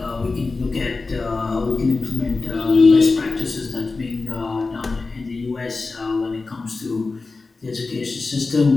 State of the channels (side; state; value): right; quieter; 3.9 dB